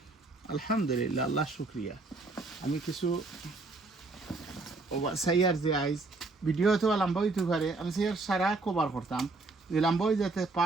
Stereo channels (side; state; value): left; quieter; 3.5 dB